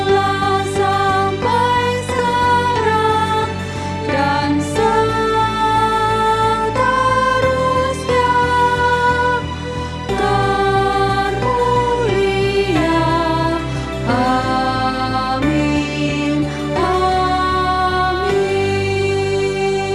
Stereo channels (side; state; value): both; identical; correlation 1.00